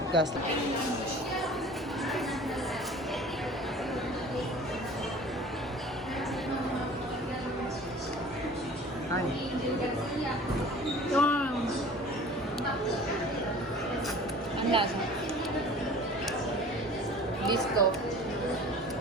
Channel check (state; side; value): normal; both; correlation 0.44